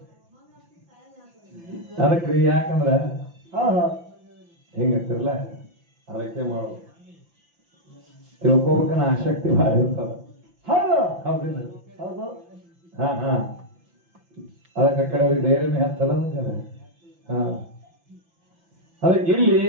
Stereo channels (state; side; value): late; left; 5.9 ms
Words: ಅದಕ್ರಿ ಯಾಕಂದ್ರ ಹೌದು ಹೆಂಗತ್ತಿರಲ್ಲ ಅದಕ್ಕೆ ಮಾಡೋದು ತಿಳ್ಕೊಬೇಕನ್ನ ಆಸಕ್ತಿ ಭಾಳ ಇರ್ತಾವ. ಹೌದು ಹೌದಿಲ್ಲ? ಹೌದು ಅದಕ್ಕೆ ಕಡೆ ಅವ್ರಿಗೆ ಧೈರ್ಯನೇ ಹತ್ತದ. ಅದಕ್ಕೆ ಇಲ್ಲಿ